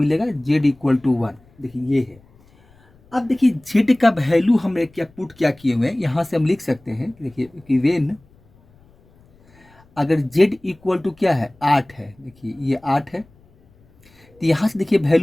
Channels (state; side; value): noise; left; rumble, 30 dB below the sound